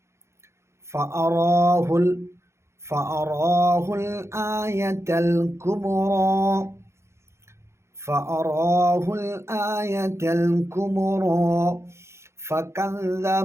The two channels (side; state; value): left; late; 0.13 ms